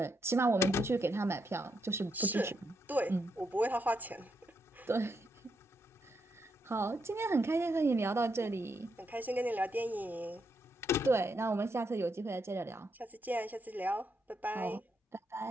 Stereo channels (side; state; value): both; normal; correlation 0.80